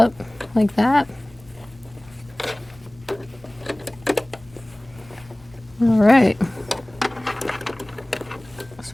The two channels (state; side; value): noise; left; rumble, 25 dB below the sound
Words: like that. All right. So